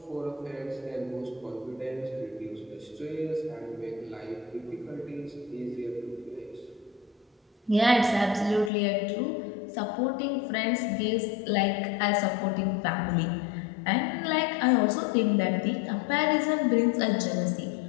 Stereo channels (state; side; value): drops out; right; at 8.7 s